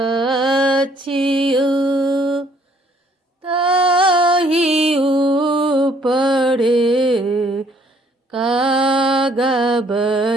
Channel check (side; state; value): both; normal; correlation 0.64